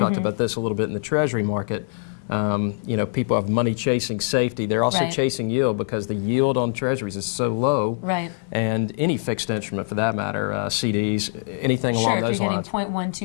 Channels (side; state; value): right; silent; digital silence